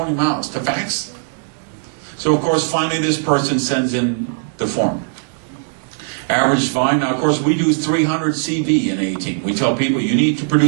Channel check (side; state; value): left; silent; digital silence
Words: miles to fax? So of course finally this person sends in the form. Average volume, now of course we do 300 CV in A18. We tell people you need to